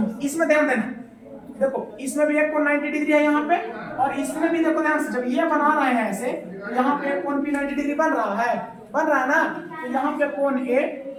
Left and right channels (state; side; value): identical; both; correlation 1.00